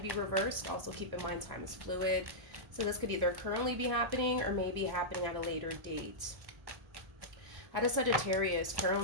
reversed. Also keep in mind time is fluid. So this could either currently be happening or maybe happening at a later date. How does Sagittarius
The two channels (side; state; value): left; late; 1.1 ms